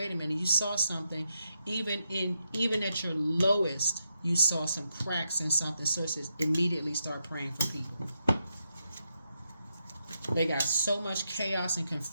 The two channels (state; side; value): inverted; both; correlation -0.83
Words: a minute, you saw something, even at your lowest, you saw some cracks in something. Sources immediately start praying for people. They got so much chaos and